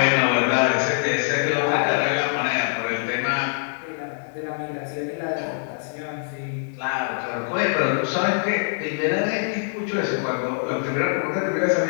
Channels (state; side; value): silent; right; digital silence